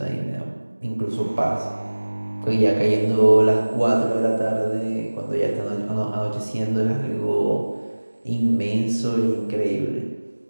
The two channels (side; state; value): both; inverted; correlation -1.00